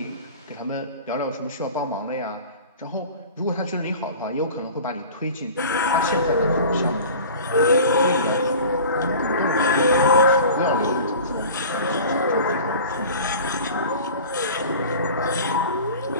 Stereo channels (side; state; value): both; inverted; correlation -0.39